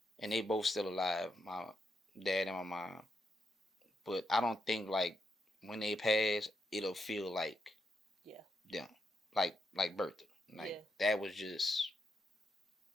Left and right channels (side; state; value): both; normal; correlation 0.82